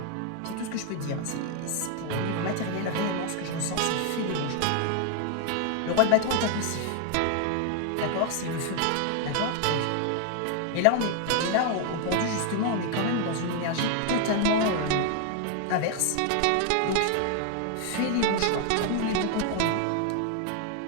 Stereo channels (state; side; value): different; both; correlation 0.01